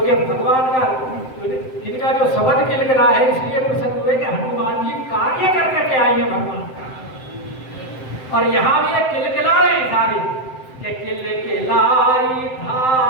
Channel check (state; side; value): late; right; 7.7 ms